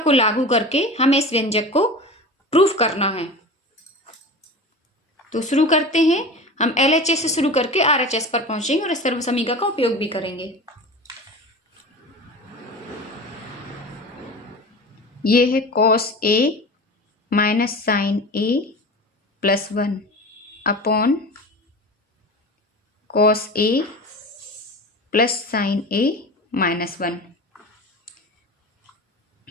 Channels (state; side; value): normal; both; correlation 0.32